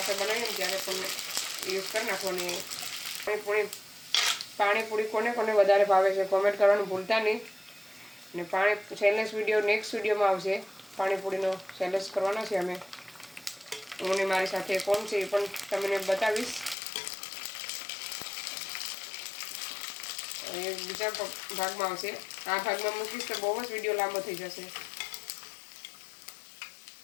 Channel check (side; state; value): right; drops out; at 16.8 s